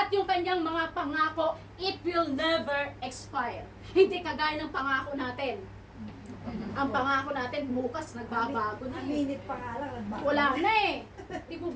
yung kanyang mga pangako, it will never expire. Hindi kagaya ng pangako natin. Ang pangako natin bukas nagbabago na Ang minute pa nga lang, nagbago. wala na eh. Di po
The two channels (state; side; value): identical; both; correlation 1.00